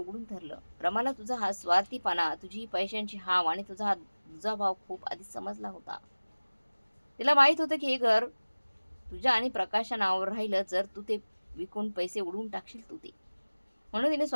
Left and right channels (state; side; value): inverted; both; correlation -1.00